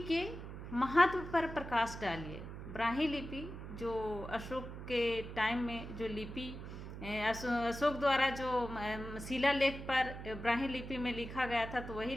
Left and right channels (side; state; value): right; noise; hum, 10 dB below the sound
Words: के महत्व पर प्रकाश डालिए। ब्राह्मी लिपि जो अशोक के टाइम में जो लिपि अशोक द्वारा जो शिलालेख पर ब्राह्मी लिपि में लिखा गया था, तो वही